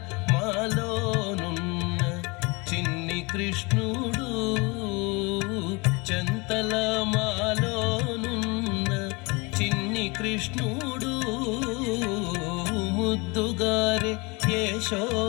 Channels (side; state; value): right; quieter; 27.6 dB